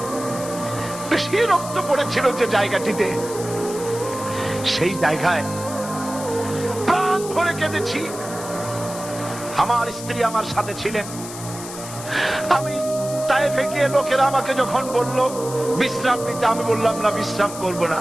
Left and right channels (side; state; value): left; noise; hiss, 12 dB below the sound